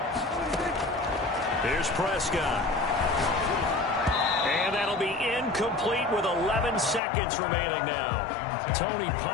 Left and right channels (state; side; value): drops out; right; at 7.0 s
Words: Here's Prescott. And that'll be incomplete with 11 seconds remaining now. Tony